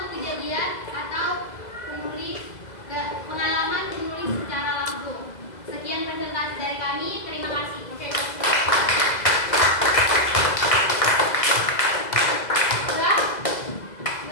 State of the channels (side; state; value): right; late; 2.0 ms